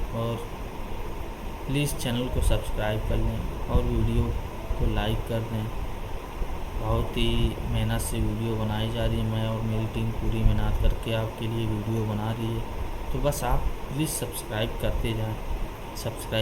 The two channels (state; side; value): identical; both; correlation 1.00